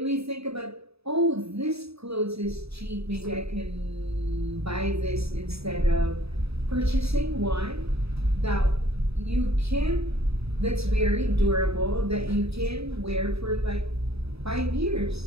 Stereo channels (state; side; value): late; left; 0.78 ms